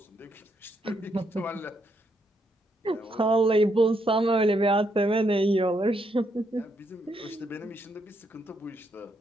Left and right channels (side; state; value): both; normal; correlation 0.77